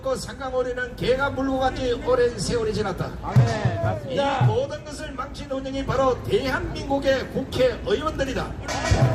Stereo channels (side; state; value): both; identical; correlation 1.00